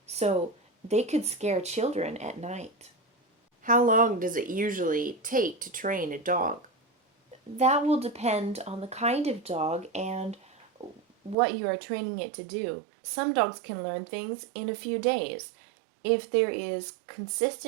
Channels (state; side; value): drops out; left; at 11.4 s